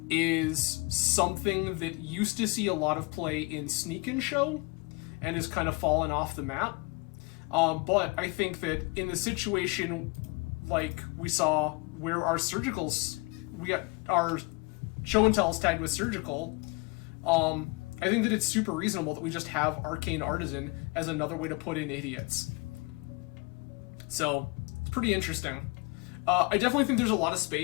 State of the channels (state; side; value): quieter; right; 27.0 dB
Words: is something that used to see a lot of play in Sneak and Show and has kind of fallen off the map. But I think that in the situation like we saw where our Surgicals, we got our Show and Tells tagged with Surgical, I think that it's super reasonable that we just have Arcane Artisan as another way to put in idiots. So, it's pretty interesting. I definitely think there's a lot of